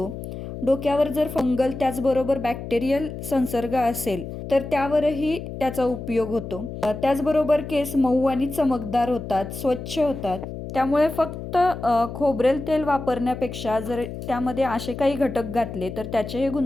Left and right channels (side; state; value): left; noise; hum, 9 dB below the sound